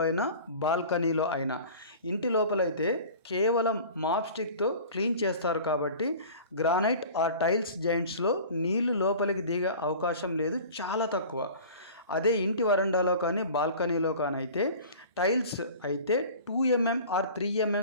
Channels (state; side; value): inverted; both; correlation -0.41